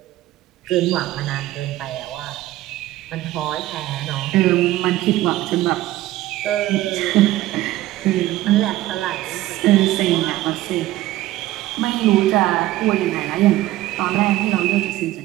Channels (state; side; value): quieter; left; 15.7 dB